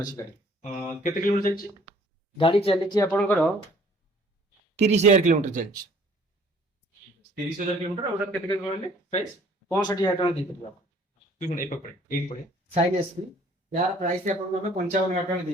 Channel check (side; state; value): both; normal; correlation 0.57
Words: अछि गाड़ी केते किलोमीटर जाइछि गाड़ी चलिछि आपनकर 30000 किलोमीटर चलिछि 30000 किलोमीटर और केते के कहले प्राइस 65000 टଙ୍କା देई ପାରିବା तू ए पकड़े एक पड़े साइन एसपी यार प्राइस आपनको ଆମେ 55000 ଟଙ୍କା